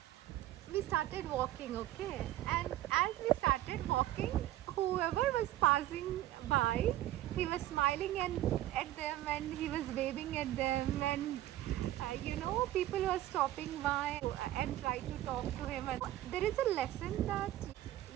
we started walking, okay, and as we started walking, whoever was passing by, he was smiling and at them, and he was waving at them, and people were stopping by and try to talk to him. And there is a lesson that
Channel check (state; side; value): quieter; left; 14.3 dB